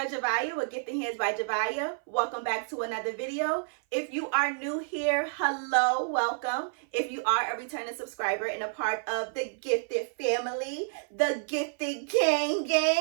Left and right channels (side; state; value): left; silent; 56 dB below the other